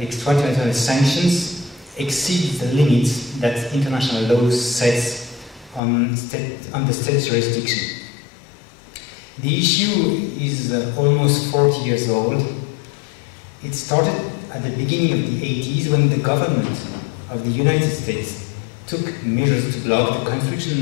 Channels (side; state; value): right; drops out; at 5.8 s